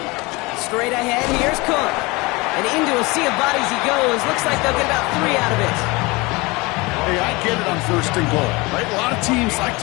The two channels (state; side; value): quieter; right; 24.4 dB